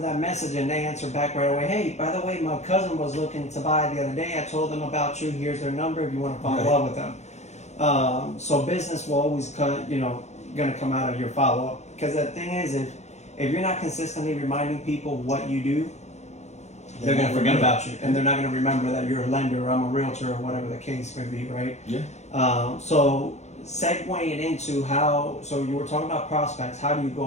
that message and they answer back right away, hey, by the way, my cousin was looking to buy the other day. I told them about you. Here's their number if you want to follow up with them. So business will always going to come out of your follow-up. Because the thing is, if you're not consistently reminding people what you do, they're going to forget about you. And they're not going to remember that you're a lender or I'm a realtor or whatever the case may be, right? Yeah. So segueing into so you were talking about prospects. How do you go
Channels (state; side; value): late; right; 0.33 ms